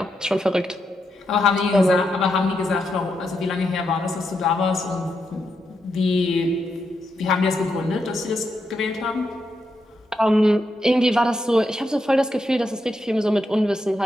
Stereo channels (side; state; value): both; normal; correlation 0.83